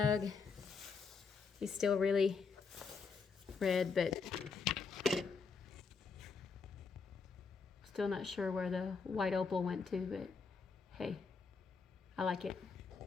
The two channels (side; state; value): right; quieter; 5.1 dB